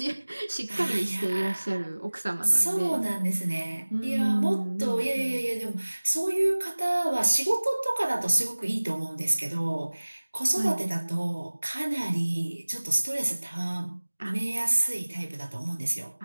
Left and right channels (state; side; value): inverted; both; correlation -1.00